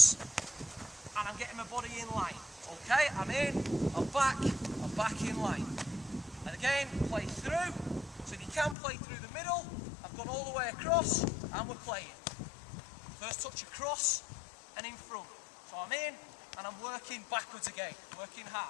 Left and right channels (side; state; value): right; drops out; at 8.8 s